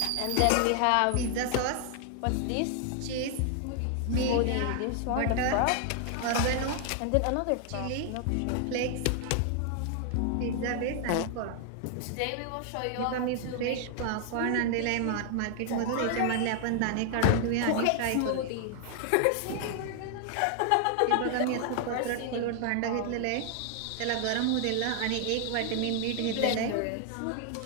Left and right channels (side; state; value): both; different; correlation 0.00